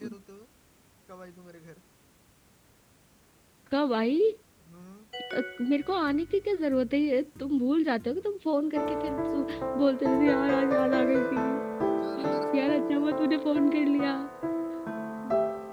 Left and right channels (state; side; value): identical; both; correlation 1.00